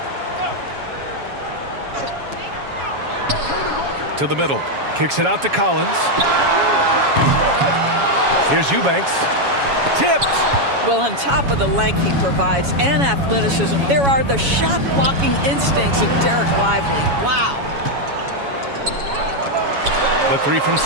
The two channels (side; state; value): left; late; 7.2 ms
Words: To the middle. Kicks it out to Collins. Here's Eubanks. Tipped. Well, on top of the length he provides and athleticism, there are the shot-blocking instincts of Derek Lively. Wow. The three from